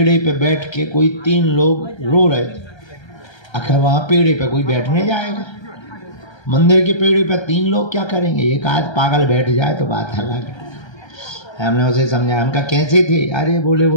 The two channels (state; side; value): late; right; 1.3 ms